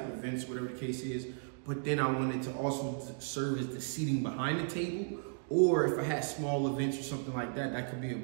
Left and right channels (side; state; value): left; silent; digital silence